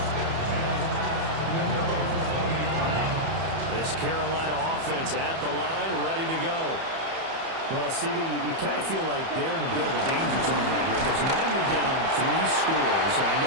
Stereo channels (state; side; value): late; left; 30 ms